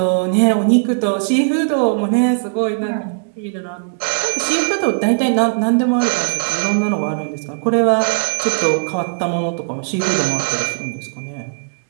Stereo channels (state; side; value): silent; left; digital silence